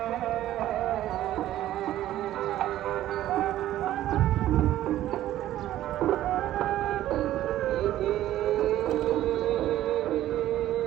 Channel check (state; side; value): quieter; left; 13.5 dB